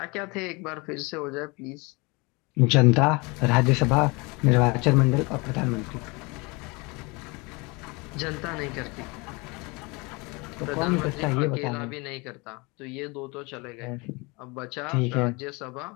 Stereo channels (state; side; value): quieter; right; 27.2 dB